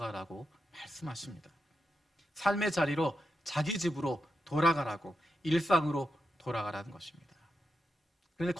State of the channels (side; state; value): both; normal; correlation 0.87